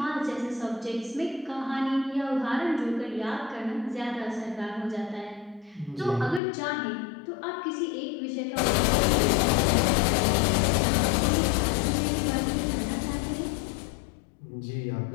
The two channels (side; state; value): right; drops out; at 6.4 s